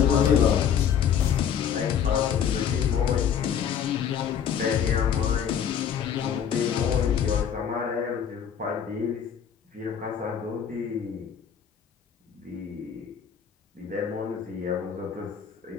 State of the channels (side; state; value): right; quieter; 8.2 dB